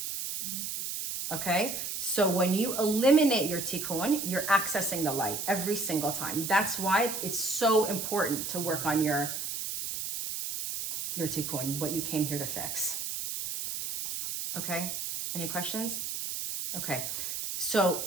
Okay, so when you eliminate your tikkun, you're accessing the light every single time. That's why it's so important to work on your tikkun, what you came here to fix. Okay, any questions? Okay, so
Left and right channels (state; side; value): noise; right; hiss, 4 dB below the sound